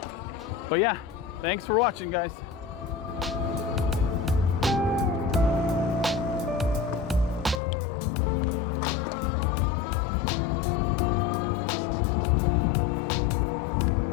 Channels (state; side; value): drops out; right; at 7.6 s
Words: But yeah, thanks for watching, guys.